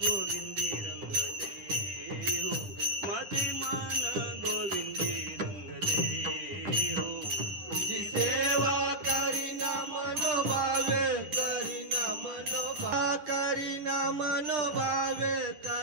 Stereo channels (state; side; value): late; left; 9.8 ms